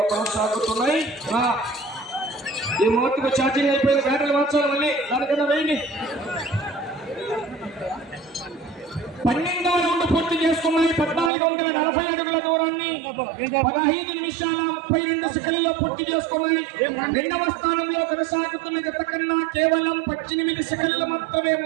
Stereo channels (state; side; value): drops out; left; at 11.3 s